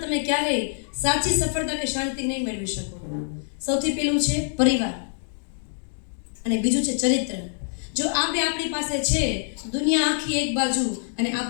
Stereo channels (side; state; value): right; silent; digital silence